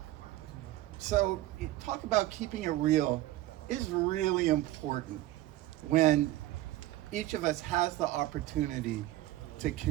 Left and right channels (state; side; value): quieter; left; 15.9 dB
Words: So talk about keeping it real is really important when each of us has the opportunity to